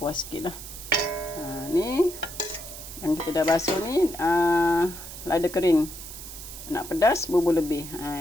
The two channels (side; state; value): right; noise; hiss, 12 dB below the sound